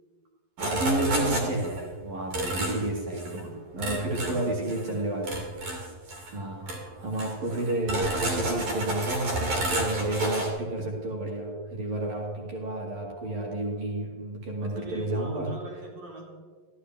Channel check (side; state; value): left; late; 11 ms